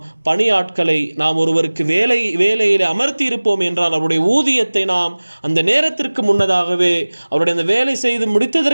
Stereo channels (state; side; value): inverted; both; correlation -1.00